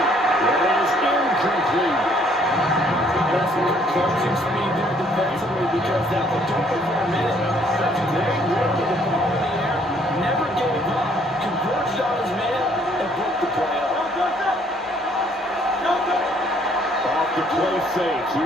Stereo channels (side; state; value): both; normal; correlation 0.64